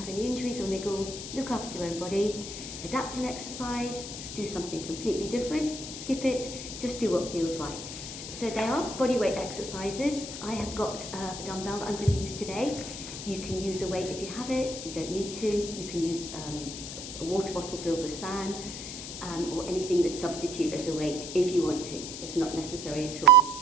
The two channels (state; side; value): noise; left; hiss, 8 dB below the sound